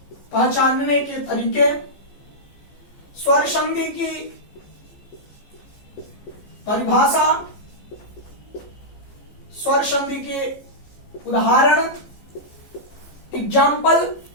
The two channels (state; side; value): late; right; 15 ms